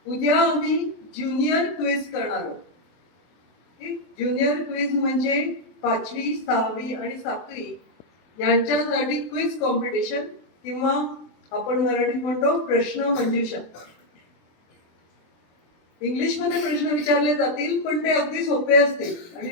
उद्या आम्ही ज्युनियर क्विज करणार आहोत. ज्युनियर क्विज म्हणजे 5वी, 6वी आणि 7वी यांच्यासाठी क्विज कॉम्पिटिशन, किंवा आपण मराठीत म्हणतो प्रश्न मंजुषा. इंग्लिश मध्ये प्रश्न विचारले जातील, पण ते अगदी सोपे असतील आणि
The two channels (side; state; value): right; late; 23 ms